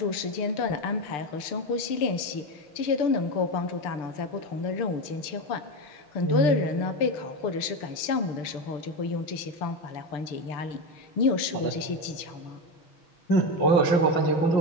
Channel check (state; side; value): late; right; 6.8 ms